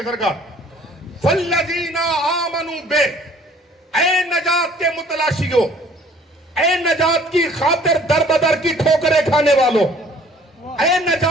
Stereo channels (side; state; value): both; normal; correlation 0.55